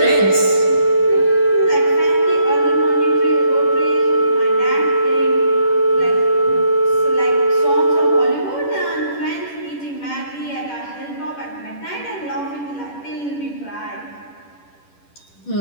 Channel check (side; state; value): right; late; 10 ms